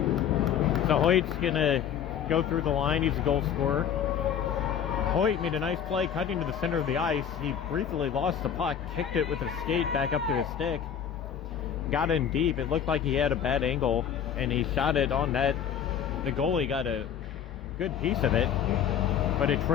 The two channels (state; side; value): quieter; right; 8.6 dB